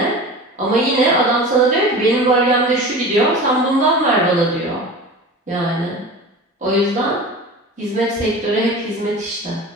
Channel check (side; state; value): both; normal; correlation 0.34